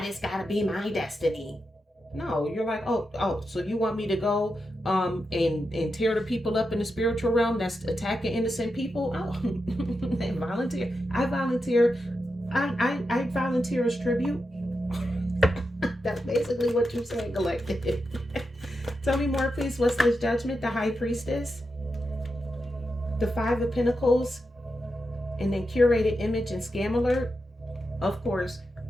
gotta be my destiny? No, you're like, oh, so you want me to go and tear the people up in the spiritual realm that's attacking innocent people? Oh, and volunteer. I volunteer. I volunteer as tribute. That's basically what you're saying, collective. Tell me more, please. What's this judgment? The High Priestess, the Five of Pentacles, and then curated image and scam alert. Of course,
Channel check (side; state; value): both; normal; correlation 0.87